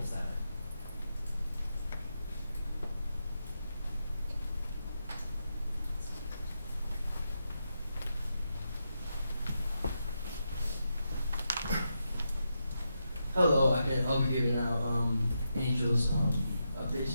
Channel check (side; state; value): both; inverted; correlation -0.85